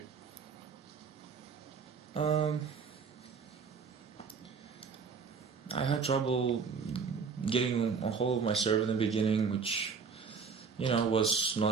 I had trouble getting a hold of my serve in the beginning, which, was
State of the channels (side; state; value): left; quieter; 5.6 dB